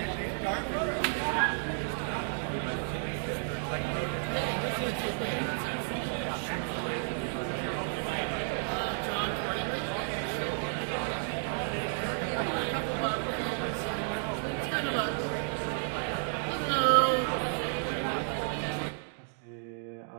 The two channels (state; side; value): silent; left; 56 dB below the other